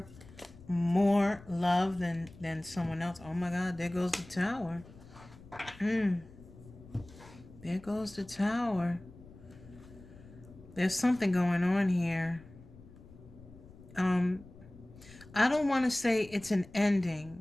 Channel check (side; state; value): left; noise; rumble, 20 dB below the sound